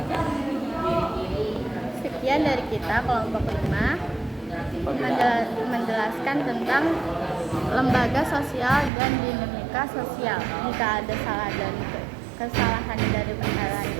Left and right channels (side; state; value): left; drops out; at 8.9 s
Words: Sekian dari kita kelompok 5 menjelaskan tentang lembaga sosial dan dinamika sosial. Jika ada kesalahan dari penjelasan